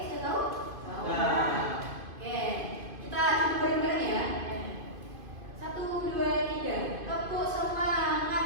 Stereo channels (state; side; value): late; left; 2.5 ms